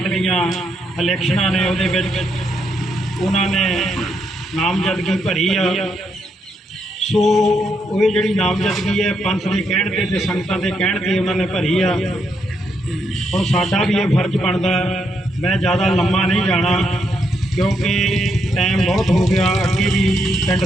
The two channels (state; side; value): normal; both; correlation 0.78